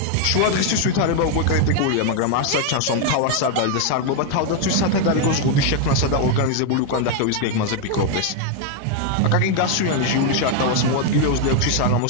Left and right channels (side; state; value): both; different; correlation 0.01